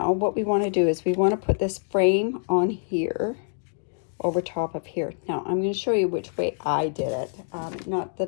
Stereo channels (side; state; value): right; silent; digital silence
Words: what we want to do is we want to put this frame on here, over top of here. Now I'm going to show you which way I did it. Not